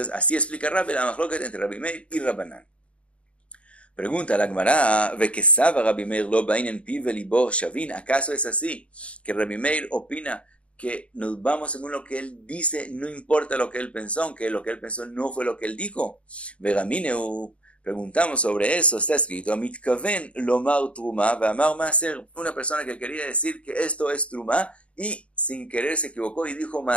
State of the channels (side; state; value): right; late; 0.062 ms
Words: así explica Rabbi la machloket entre Rabbi Meir y Rabbanán. Pregunta la Gemara, ¿Vekesava Rabbi Meir lo bainen piv velibo shavin? ¿Acaso es así que Rabbi Meir opina que nos vamos según lo que él dice, no importa lo que él pensó, aunque lo que él pensó no fue lo que él dijo? Vegamineu, preguntamos sobre eso, está escrito, Amitkaven lomar truma ve'amar maaser, una persona que quería decir que esto es truma y sin querer se equivocó y dijo